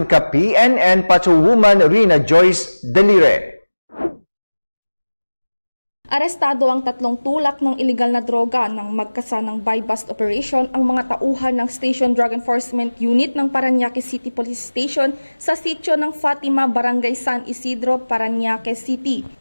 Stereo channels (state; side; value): inverted; both; correlation -1.00